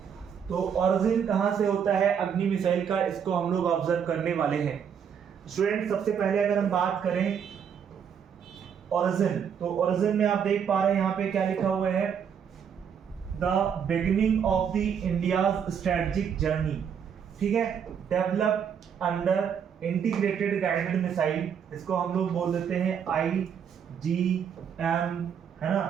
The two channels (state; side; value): quieter; left; 7.7 dB